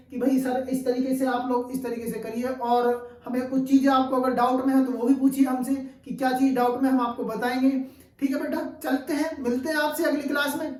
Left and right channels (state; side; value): identical; both; correlation 1.00